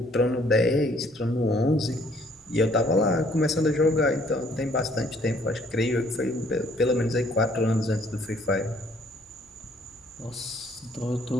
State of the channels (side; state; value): both; normal; correlation 0.62